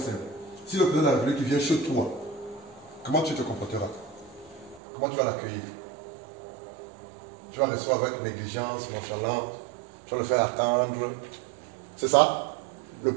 Si le président de la République vient chez toi, comment tu te comporteras? Comment tu vas l'accueillir? Tu vas le recevoir avec négligence, nonchalance, tu vas le faire attendre. C'est ça? Le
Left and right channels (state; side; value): drops out; left; at 4.8 s